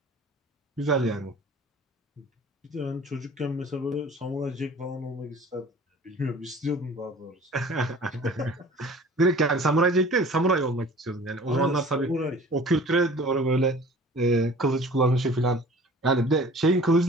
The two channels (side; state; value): both; normal; correlation 0.46